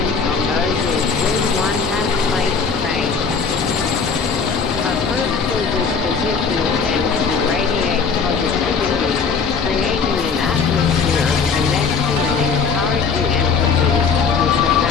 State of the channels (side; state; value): right; quieter; 5.5 dB